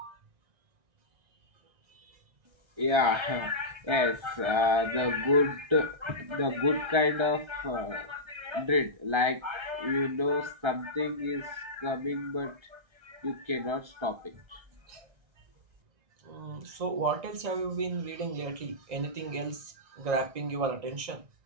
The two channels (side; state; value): left; late; 1.3 ms